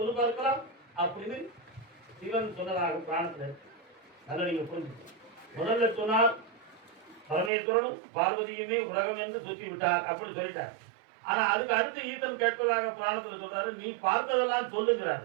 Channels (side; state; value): left; drops out; at 7.5 s